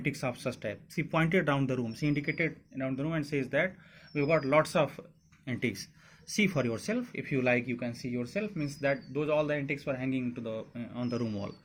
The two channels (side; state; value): both; identical; correlation 1.00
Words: of such type. She pointed down the room. She indicated down the room and says that we've got lots of antiques. See for yourself. If you like, you can see yourself. Means that those all the antiques were hanging to the on the room wall.